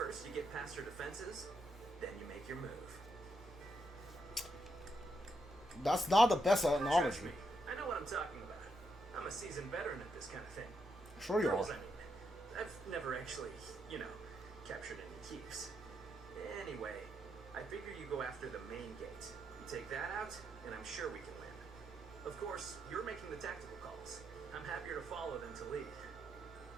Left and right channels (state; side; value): normal; both; correlation 0.80